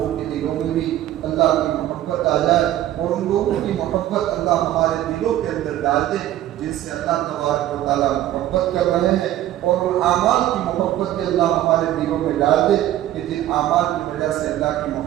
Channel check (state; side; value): quieter; left; 13.3 dB